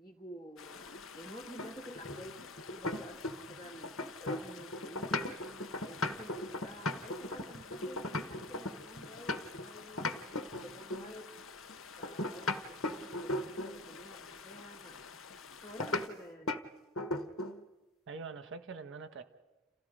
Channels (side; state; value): both; normal; correlation 0.32